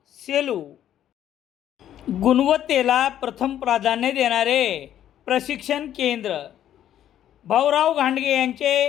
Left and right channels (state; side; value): quieter; right; 11.1 dB